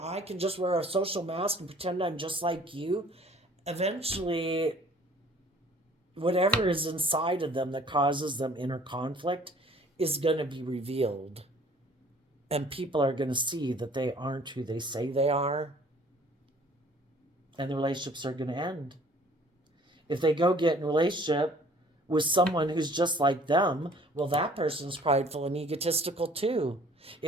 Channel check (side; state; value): both; normal; correlation 0.54